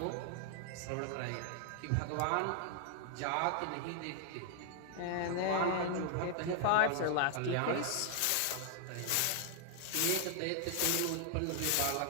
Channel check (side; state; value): both; different; correlation 0.00